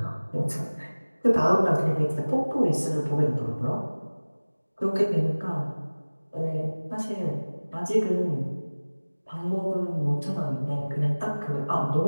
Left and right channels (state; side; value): inverted; both; correlation -1.00